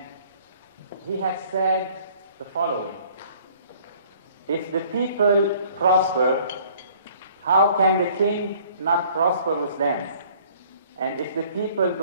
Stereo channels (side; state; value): both; inverted; correlation -0.56